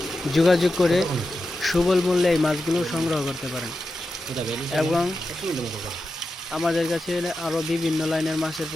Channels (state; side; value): normal; both; correlation 0.90